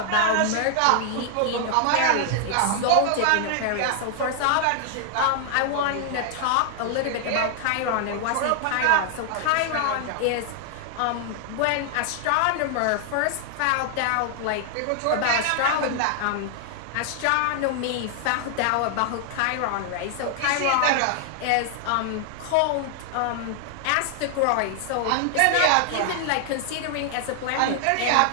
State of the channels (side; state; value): both; different; correlation 0.00